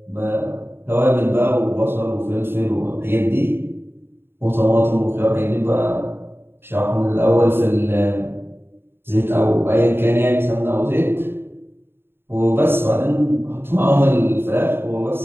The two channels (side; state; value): left; late; 0.11 ms